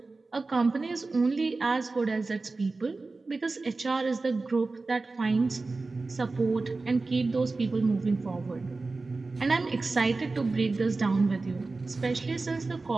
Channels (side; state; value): left; quieter; 3.6 dB